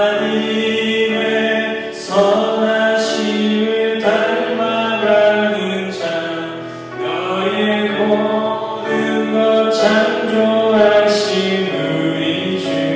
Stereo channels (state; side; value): identical; both; correlation 1.00